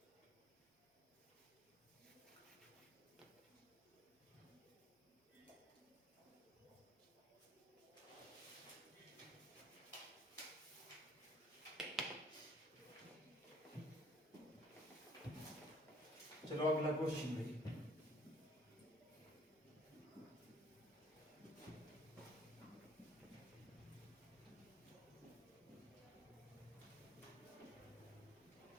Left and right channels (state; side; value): normal; both; correlation 0.59